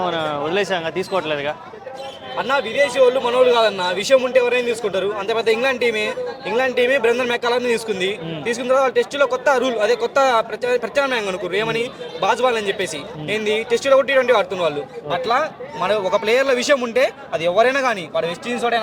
వదిలేసాం, తీసుకోవట్లేదుగా అన్న. విదేశీ వాళ్ళు మనోళ్ళు కాదన్న, విషయం ఉంటే ఎవరైనా తీసుకుంటారు. అంత పెద్ద ఇంగ్లాండ్ టీమే బ్రెండన్ మెక్కాలని తీసుకున్న తర్వాత టెస్టులో కొత్త రూల్, అదే కొత్త ప్రత్యామ్నాయం అనుకున్నారు. ఏమని? బాజ్బాల్ అని చెప్పేసి. ఏంది? టెస్టులో కూడా T20 ఆడుతున్న వాళ్ళు. అట్లా మన ఒక ప్లేయర్ల విషయం ఉంటే అది ఎవరైనా కానీ, వాడు వెస్ట్ ఇండీస్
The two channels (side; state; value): both; identical; correlation 1.00